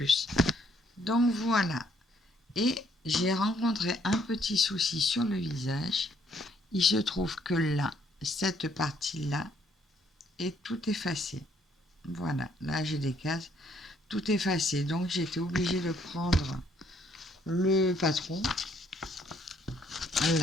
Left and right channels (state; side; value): normal; both; correlation 0.67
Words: Donc voilà. Et j'ai rencontré un petit souci sur le visage. Il se trouve que là, cette partie-là est tout effacée. Voilà, là j'ai des cases, tout effacé. Donc j'étais obligée de prendre le patron.